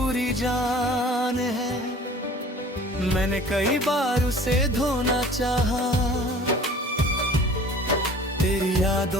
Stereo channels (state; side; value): normal; both; correlation 0.47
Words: जान है। मैंने कई बार उसे धोना चाहा, तेरी